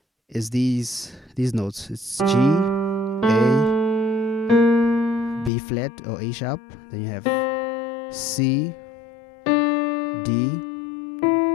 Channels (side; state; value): right; drops out; at 5.5 s